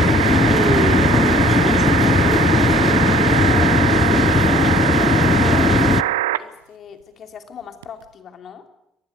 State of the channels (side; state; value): both; normal; correlation 0.54